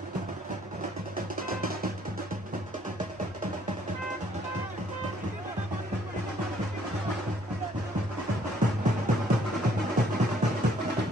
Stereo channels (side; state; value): both; normal; correlation 0.63